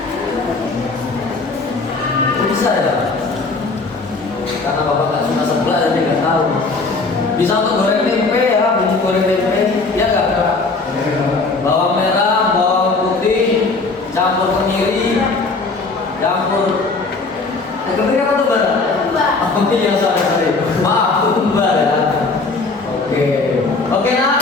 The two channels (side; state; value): right; quieter; 3.8 dB